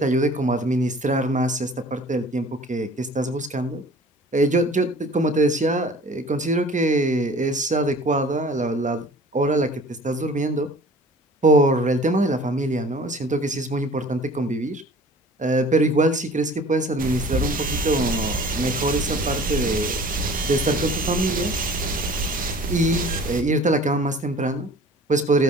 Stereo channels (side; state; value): both; normal; correlation 0.47